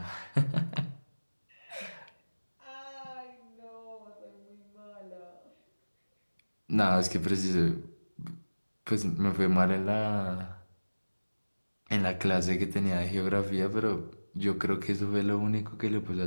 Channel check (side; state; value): both; inverted; correlation -1.00